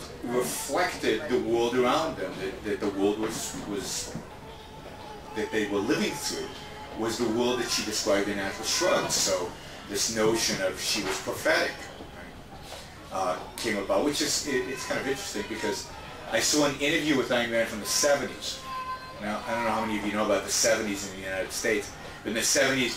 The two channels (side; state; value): both; identical; correlation 1.00